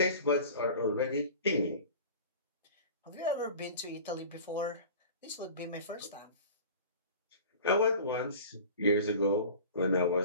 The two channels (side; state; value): both; inverted; correlation -0.39